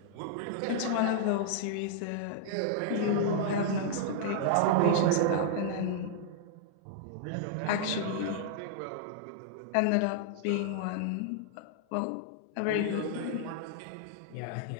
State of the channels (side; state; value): both; different; correlation -0.01